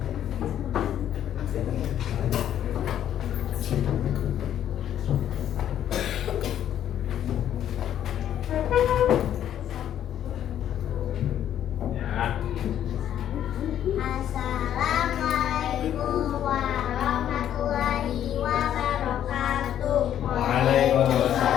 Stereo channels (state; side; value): quieter; right; 10.6 dB